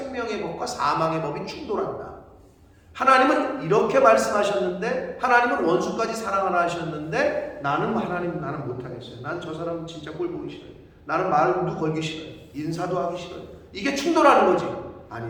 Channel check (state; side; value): identical; both; correlation 1.00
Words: 법과 사망의 법이 충돌한다. 하나님은 이렇게 말씀하셨는데, 하나님은 원수까지 사랑하라 하셨는데, 나는 못하겠어요. 난 저 사람 진짜 꼴 보기 싫어요. 나는 말도 걸기 싫어요. 인사도 하기 싫어요. 이게 충돌하는 거지.